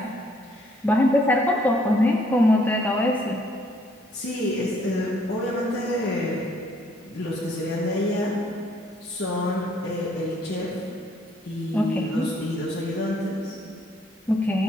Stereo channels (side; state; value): both; normal; correlation 0.66